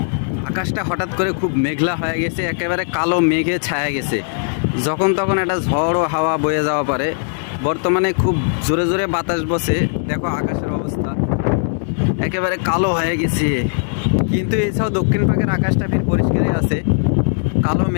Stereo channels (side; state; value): right; silent; 67 dB below the other